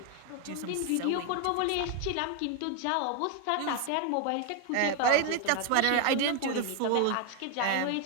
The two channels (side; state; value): both; different; correlation 0.01